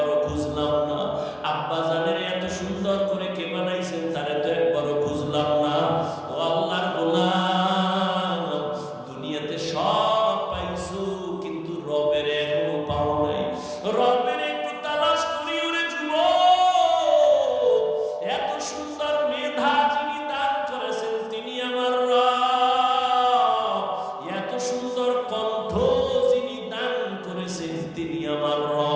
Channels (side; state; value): both; identical; correlation 1.00